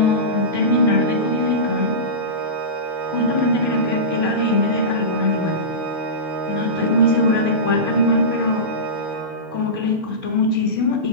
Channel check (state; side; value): late; left; 6.4 ms